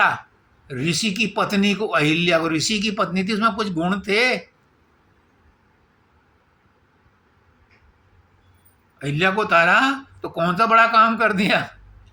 ऋषि की पत्नी को, अहिल्या को। ऋषि की पत्नी थी, उसमें कुछ गुण थे। अहिल्या को तारा तो कौन सा बड़ा काम कर दिया,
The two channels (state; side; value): identical; both; correlation 1.00